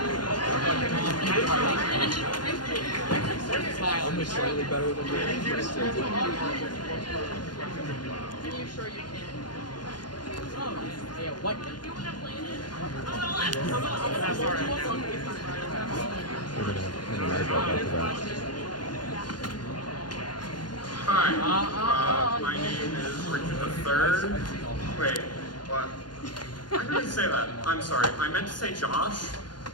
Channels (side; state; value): right; late; 0.71 ms